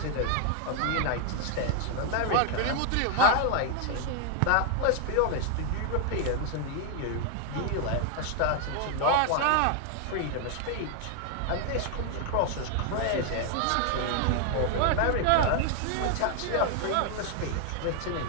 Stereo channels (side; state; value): both; different; correlation 0.00